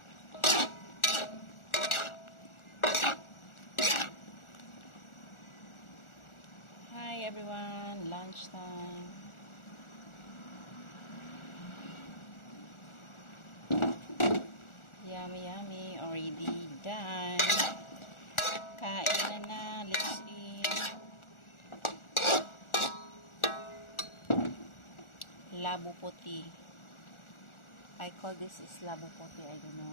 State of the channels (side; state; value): right; late; 1.4 ms